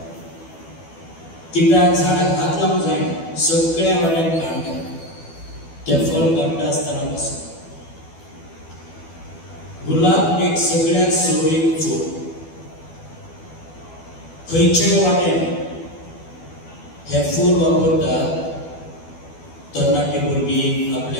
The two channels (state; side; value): late; right; 12 ms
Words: कित्याक झाडाक हात लावंक जायना. सगळ्या वाड्यान कांटे. ते फळ काडटा आसतना पासून गुलाब एक सगळ्यात सोबीत फूल. खंयच्याय वाटेन हे फूल वापरतात. तरणाटी भुरगीं